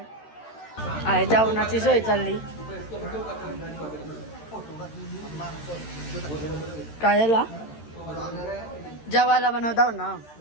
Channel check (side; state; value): right; late; 13 ms